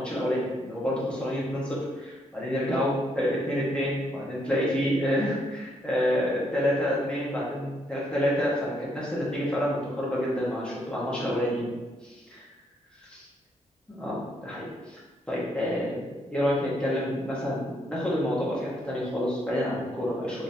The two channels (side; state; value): both; normal; correlation 0.73